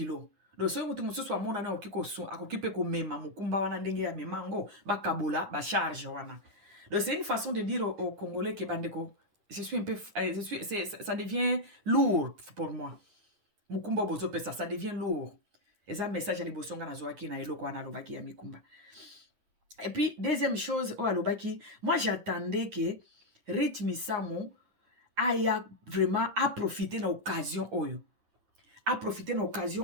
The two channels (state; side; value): late; left; 9.8 ms